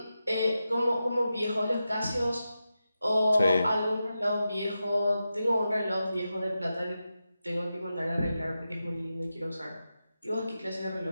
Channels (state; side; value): inverted; both; correlation -0.90